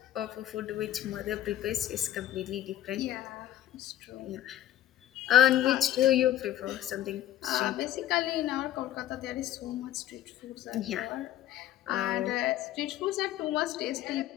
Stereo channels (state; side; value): quieter; right; 12.7 dB